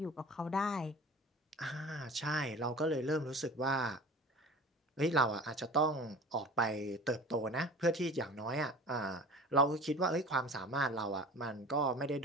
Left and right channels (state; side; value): normal; both; correlation 0.40